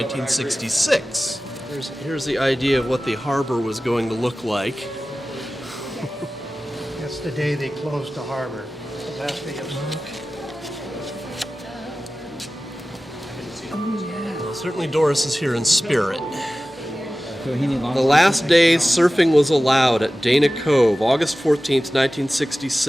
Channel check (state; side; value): normal; both; correlation 0.96